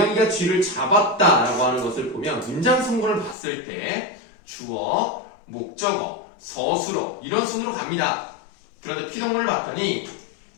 쥐를 잡았다라고 하는 것을 보면 문장 성분을 봤을 때 주어, 목적어, 서술어 이런 순으로 갑니다. 그런데 피동문을 봤더니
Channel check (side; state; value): right; drops out; at 3.4 s